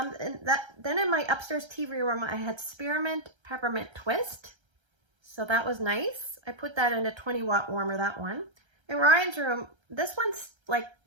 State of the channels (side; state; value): left; late; 1.3 ms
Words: in my upstairs TV room, I had Spearmint Peppermint Twist. So that was nice. I put that in a 20-watt warmer, that one. In Ryan's room, this